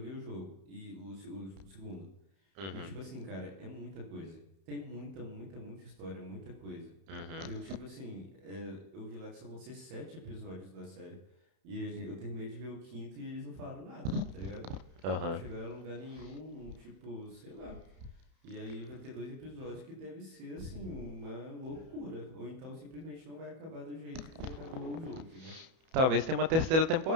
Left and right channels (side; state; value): left; late; 31 ms